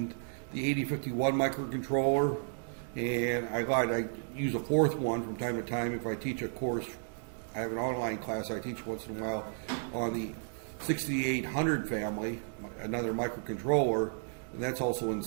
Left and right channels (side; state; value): left; silent; digital silence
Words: the 8051 microcontroller, and I use a 4th one from time to time if I teach a course. I have an online class I teach once in a while on the 6800 family, another microcontroller, and that's also in